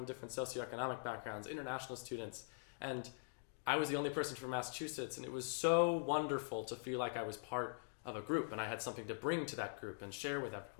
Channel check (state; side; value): silent; right; digital silence